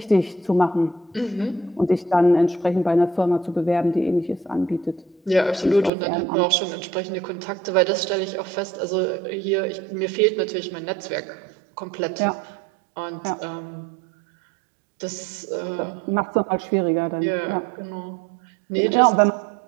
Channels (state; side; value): drops out; left; at 5.9 s